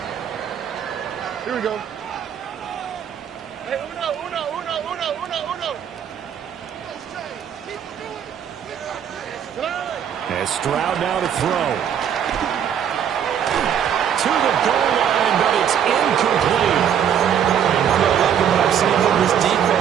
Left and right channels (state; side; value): quieter; left; 8.8 dB